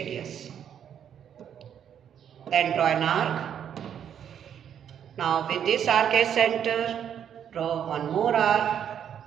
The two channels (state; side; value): quieter; left; 9.0 dB